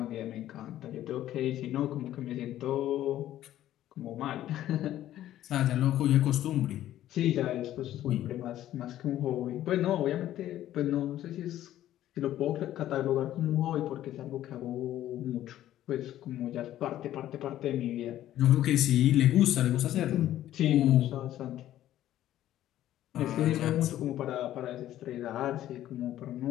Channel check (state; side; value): quieter; right; 13.0 dB